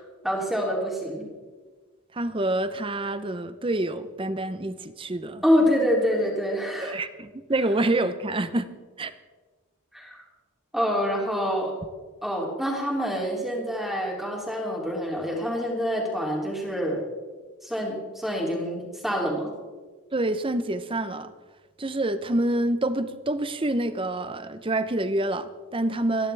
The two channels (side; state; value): both; normal; correlation 0.61